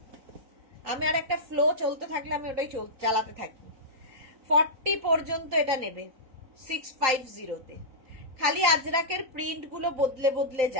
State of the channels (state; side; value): late; left; 3.8 ms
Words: আমি আর একটা ফ্লো চলতে থাকলে আমি ওটাই চালাতে থাকি। 40 পর্যন্ত এটা নেবে 650-তে, খালি আজরাকের প্রিন্ট গুলো বদলে বদলে